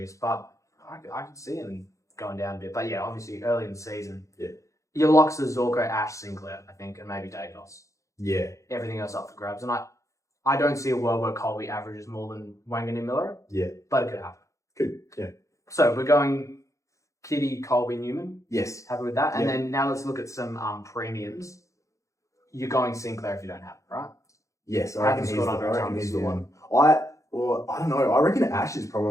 but I could see him going down a bit. But yeah, obviously early in the season. Yeah. Your locks are Zorko, Ash, Sinclair, I think, and maybe Dacos. Yeah. Everything else up for grabs. And I don't see a world where Colby averages more than Wangan and Miller. Yeah. But it could happen. Good. Yeah. So we're going Kitty, Colby, Newman. Yes. Happy with that? And Yeah. then now let's look at some premiums. You're going Sinclair if you don't have it, right? Yes, I Hasn't reckon he's scored the, under I a reckon ton he's this the year. one. I don't know. I reckon Ash is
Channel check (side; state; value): right; late; 0.15 ms